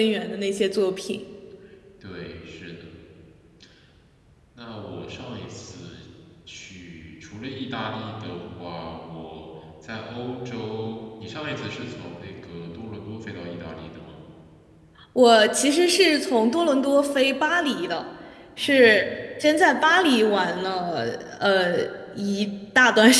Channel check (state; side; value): identical; both; correlation 1.00